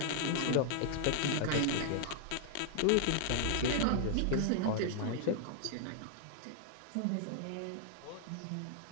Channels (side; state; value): both; different; correlation -0.01